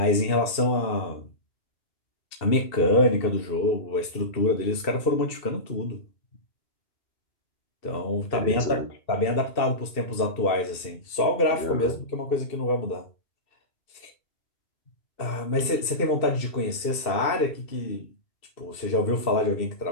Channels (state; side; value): late; right; 2.7 ms